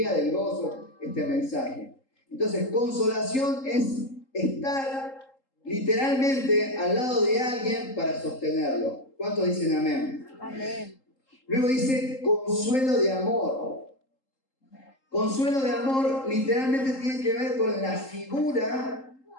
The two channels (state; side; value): late; right; 3.8 ms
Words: del gozo este mensaje. Entonces, consolación es estar literalmente al lado de alguien para sostenerlo. ¿Cuántos dicen amén? Amén. Luego dice consuelo de amor. Consuelo de amor literalmente tiene que ver con la figura